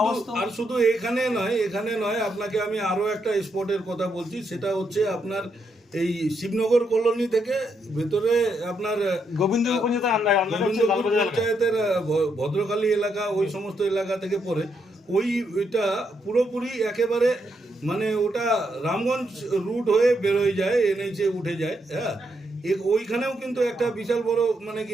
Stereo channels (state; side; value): normal; both; correlation 0.79